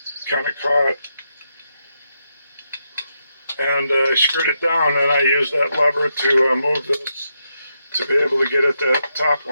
kind of caught. And I screwed it down, and I used that lever to move this to be able to get at that top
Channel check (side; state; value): both; inverted; correlation -0.83